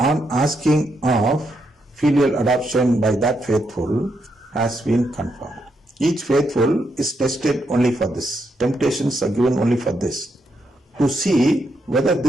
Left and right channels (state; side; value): normal; both; correlation 0.80